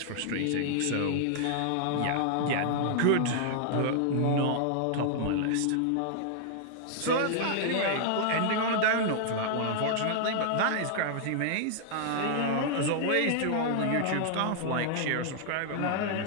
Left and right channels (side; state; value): both; different; correlation -0.01